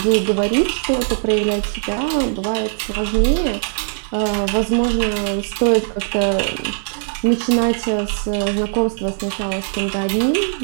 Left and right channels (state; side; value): silent; left; 65 dB below the other